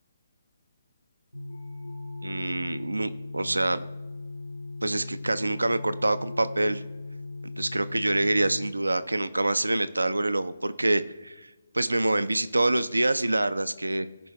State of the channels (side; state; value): both; inverted; correlation -0.97